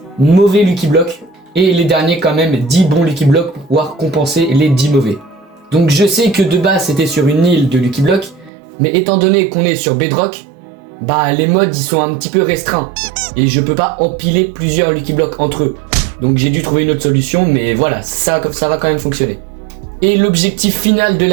mauvais Lucky Block, et les derniers quand même 10 bons Lucky Block pour pouvoir compenser les 10 mauvais. Donc je sais que de base c'était sur une île de Lucky Block, mais étant donné qu'on est sur Bedrock, bah les mods ils sont un petit peu restreints. Et je peux pas empiler plusieurs Lucky Block entre eux. Donc j'ai dû trouver une autre solution, mais voilà, ça va quand même fonctionner. Et l'objectif final de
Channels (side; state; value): left; drops out; at 8.5 s